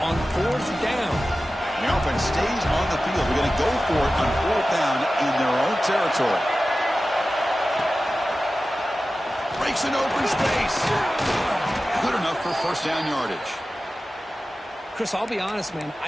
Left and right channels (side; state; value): both; normal; correlation 0.95